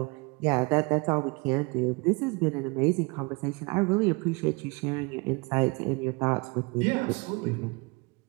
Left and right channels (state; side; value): quieter; left; 28.2 dB